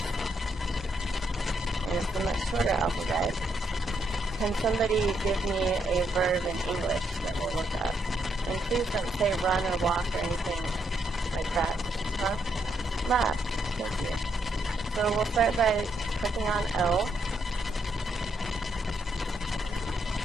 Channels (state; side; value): normal; both; correlation 0.76